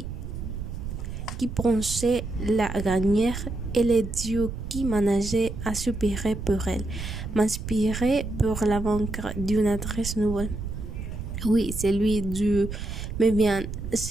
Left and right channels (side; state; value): right; noise; rumble, 7 dB below the sound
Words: pensait la gagner, et les dieux qui manageaient à soupirer pour elle, m'inspiraient pour la vaincre d'une adresse nouvelle. Oui, celui du me vient,